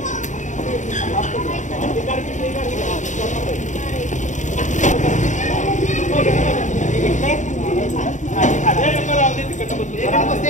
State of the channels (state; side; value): late; right; 0.36 ms